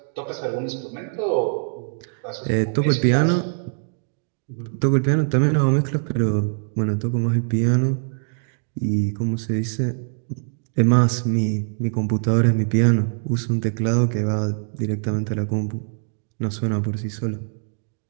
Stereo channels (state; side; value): silent; left; 64 dB below the other